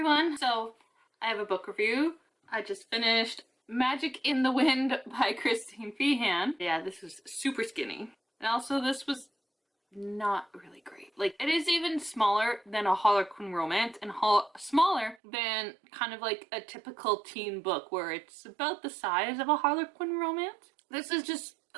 So, I have a book review. I just finished Magic in the Wind by Feehan. Yeah, this was super skinny. And also this was not really great. Like, it is even smaller than a Harlequin romance and smaller than kind of like a typical teen book where it's about the size of a Harlequin romance. This is just,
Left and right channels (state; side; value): drops out; left; at 15.2 s